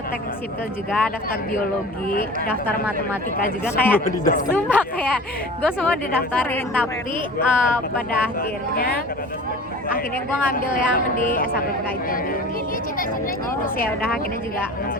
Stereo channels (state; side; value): normal; both; correlation 0.39